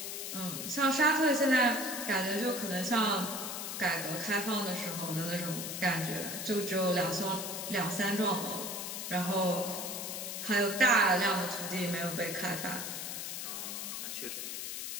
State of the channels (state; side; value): noise; left; hiss, 5 dB below the sound